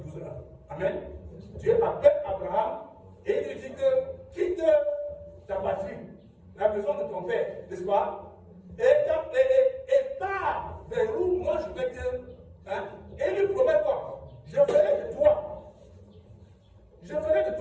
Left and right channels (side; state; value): both; identical; correlation 1.00